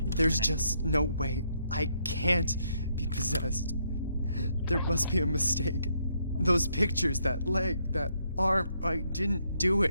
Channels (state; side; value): inverted; both; correlation -0.75